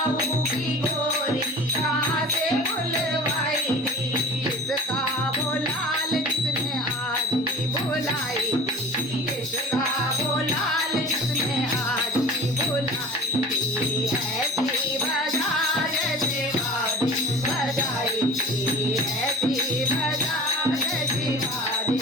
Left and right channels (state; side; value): normal; both; correlation 0.39